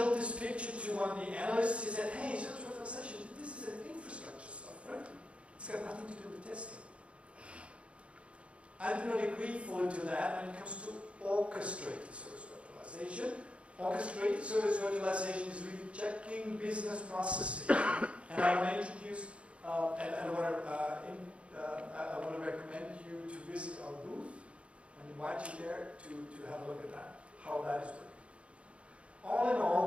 this picture to one of the analysts, he said, hey, service virtualization, this is an infrastructure stuff, right? It's got nothing to do with testing. I do not agree fully to that when it comes to orchestrated service virtualization. Orchestrated service virtualization is really checking business processes. And I want to introduce, and I want to recommend you to visit our booth and invite you there to have a look at that, how that is working. All in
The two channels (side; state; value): left; late; 0.060 ms